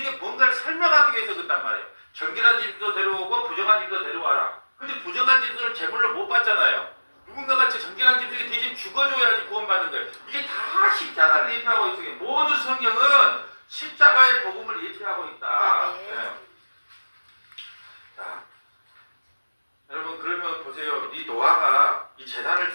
뭔가를 설명하기 위해서 그런단 말이에요. 정결한 짐승도 데려오고 부정한 짐승도 데려와라. 근데 부정한 짐승을 제물로 못 받잖아요. 누군가가 정결한 짐승이 대신 죽어줘야지 구원받는 거예요. 이게 다 십자가를 예표하고 있어요. 모든 성경은 십자가의 복음을 예표하고 있다. 네. 자, 여러분 그러면 보세요. 이 노아가 이 제단을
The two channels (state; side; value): inverted; both; correlation -1.00